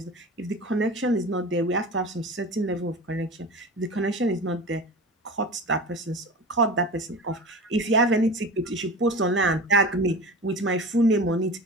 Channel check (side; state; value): both; normal; correlation 0.32